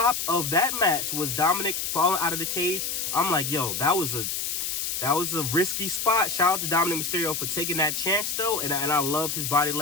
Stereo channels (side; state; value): left; noise; hiss, 2 dB below the sound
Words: of that match was Dominic falling out of the cage. I'm like, yo, that was a risky spot. Shout out to Dominic Mysterio for taking that chance, though. And I loved his body